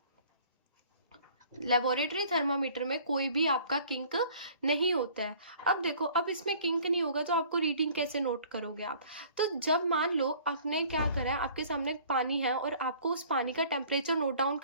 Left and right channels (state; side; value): inverted; both; correlation -0.52